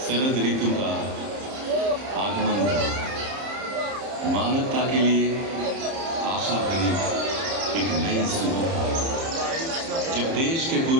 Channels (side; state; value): left; late; 30 ms